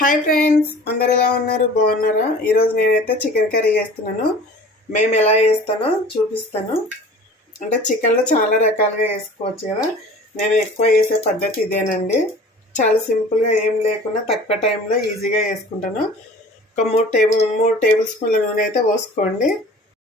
friends, అందరు ఎలా ఉన్నారు? బాగున్నారా? ఈరోజు నేనైతే చికెన్ కర్రీ చేస్తున్నాను. మేము ఎలా చేస్తానో చూపిస్తాను. అంటే చికెన్లో చాలా రకాలుగా వేసుకోవచ్చు కదా. నేను ఎక్కువ చేసే పద్ధతి ఇదేనండి. చాలా సింపుల్గా ఏం లేకుండా తక్కువ టైంలో ఈజీగా వేసుకుంటాను. ఒక మూడు టేబుల్ స్పూన్ల నూనె అయితే పోసుకోండి.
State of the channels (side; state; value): both; normal; correlation 0.44